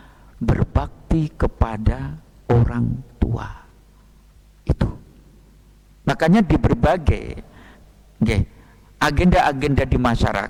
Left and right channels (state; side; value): identical; both; correlation 1.00